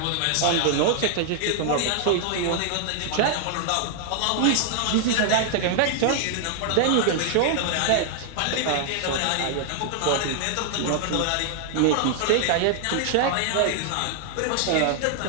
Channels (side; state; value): both; different; correlation 0.00